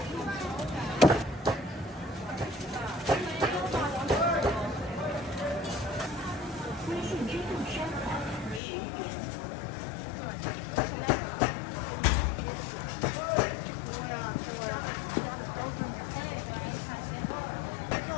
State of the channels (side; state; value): right; drops out; at 8.6 s